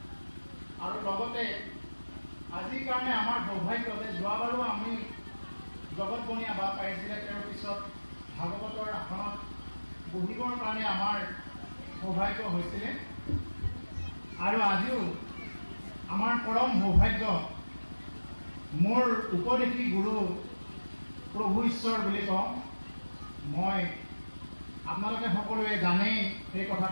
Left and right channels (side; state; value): both; inverted; correlation -1.00